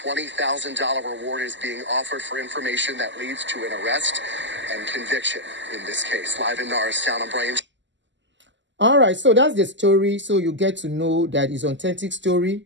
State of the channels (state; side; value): late; left; 0.54 ms